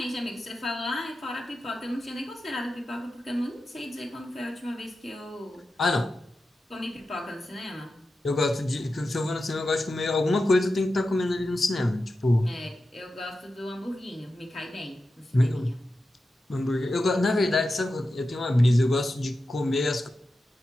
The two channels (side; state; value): both; normal; correlation 0.91